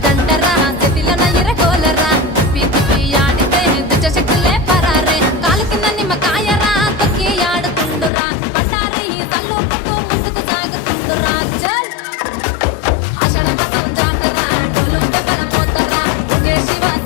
దండరా చేతిలో ఇరగోలరా తిప్పి తిప్పి ఆడితే దుచ్చ శక్తులే పరారే కాలు కింద నిమ్మకాయరా తొక్కి ఆడుతుండురా బండారి తల్లుకుంటూ ముందుకు సాగుతుండురా చల్ ఆషాఢ మాసం జాతర డొల్లు దెబ్బల మోతరా దుర్గే శివ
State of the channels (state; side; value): drops out; right; at 8.1 s